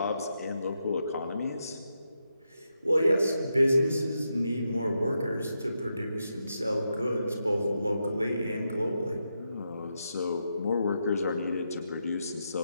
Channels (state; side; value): inverted; both; correlation -0.85